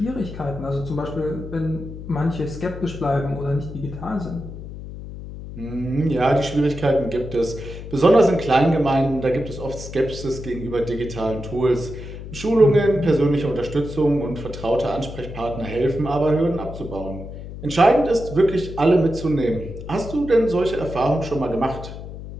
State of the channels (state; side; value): noise; left; hum, 11 dB below the sound